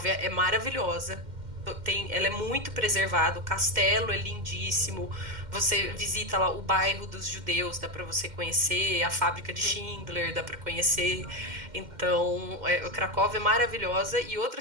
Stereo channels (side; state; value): left; late; 2.1 ms